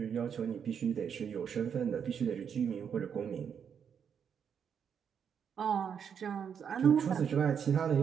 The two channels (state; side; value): quieter; left; 7.6 dB